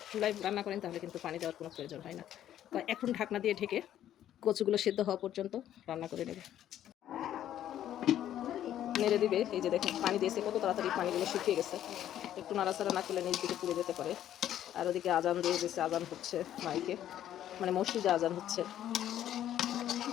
চুলায় রান্না করেন তাহলে কিন্তু পানি দেওয়ার কোনো প্রয়োজন হয় না। তো এখন ঢাকনা দিয়ে ঢেকে কচুগুলো সেদ্ধ হওয়া পর্যন্ত রান্না করে নেবে, নেড়ে দিবে। এই যে দেখুন পানি দিয়েছে, কত তাড়াতাড়ি পানিগুলো শুকিয়ে গেছে। একটু নাড়াচাড়া না করলে নিচ দিকে পুড়ে যেতে পারে। আর ওদিকে আজান দিয়ে দিয়েছে, আজান হচ্ছে মাইকে, মানে মসজিদে আজান হচ্ছে।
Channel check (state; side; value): quieter; right; 11.5 dB